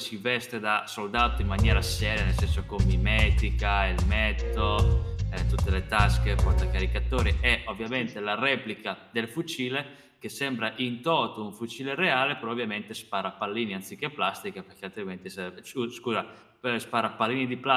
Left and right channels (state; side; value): identical; both; correlation 1.00